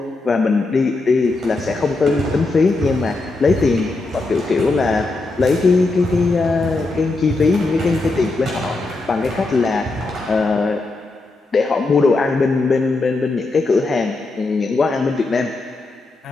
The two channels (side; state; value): right; quieter; 3.3 dB